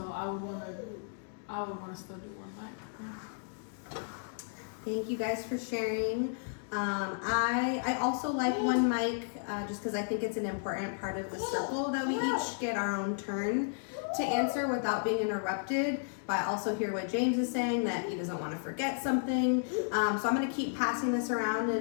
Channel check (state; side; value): silent; right; digital silence